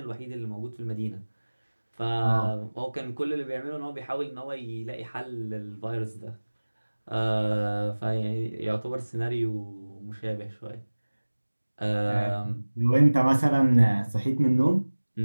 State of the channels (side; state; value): both; inverted; correlation -1.00